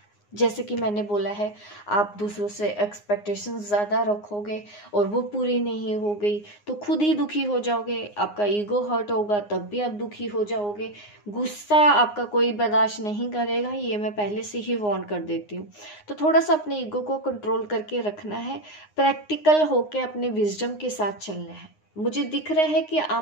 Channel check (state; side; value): late; right; 9.7 ms